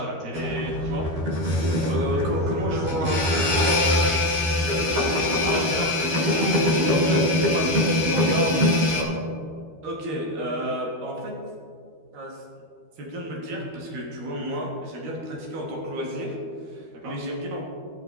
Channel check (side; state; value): left; late; 12 ms